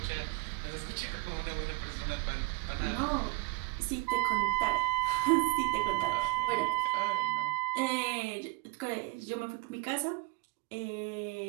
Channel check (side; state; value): left; quieter; 28.5 dB